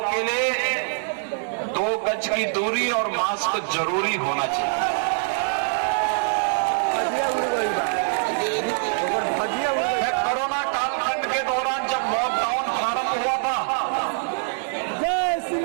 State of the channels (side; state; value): left; silent; digital silence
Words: के लिए 2 गज की दूरी और मास्क जरूरी होना चाहिए। कोरोना कालखंड के दौरान जब लॉकडाउन प्रारंभ हुआ था,